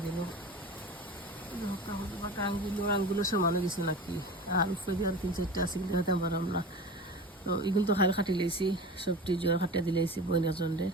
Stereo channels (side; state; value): both; normal; correlation 0.33